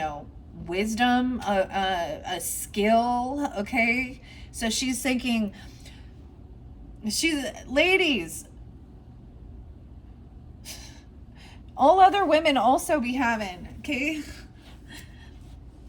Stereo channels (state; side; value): identical; both; correlation 1.00